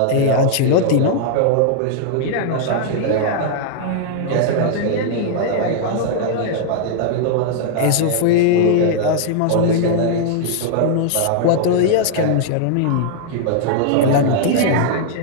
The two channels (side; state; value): both; different; correlation -0.01